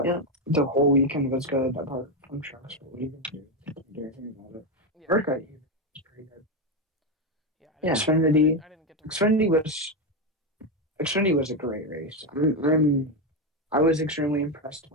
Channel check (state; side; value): normal; both; correlation 0.09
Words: yeah, the whole weekend was good, apart from trucks. But what are you gonna do? Do anything about it. Yeah, Workout was pretty good. yeah. I didn't yeah, get. I didn't. Xfinity. I didn't get to watch Xfinity it. was Xfinity was a great race. I was extremely impressed